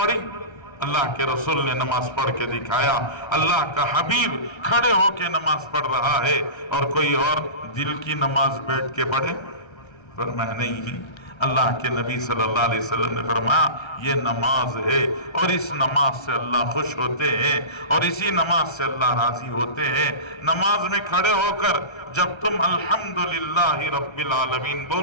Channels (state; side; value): late; right; 1.3 ms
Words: اللہ کے رسول نے نماز پڑھ کے دکھایا۔ اللہ کا حبیب کھڑے ہو کے نماز پڑھ رہا ہے، اور کوئی اور دل کی نماز بیٹھ کے پڑھے؟ فرمایا نہیں، اللہ کے نبی صلی اللہ علیہ وسلم نے فرمایا یہ نماز ہے، اور اس نماز سے اللہ خوش ہوتے ہیں، اور اسی نماز سے اللہ راضی ہوتے ہیں۔ نماز میں کھڑے ہو کر جب تم الحمدللہ رب العالمین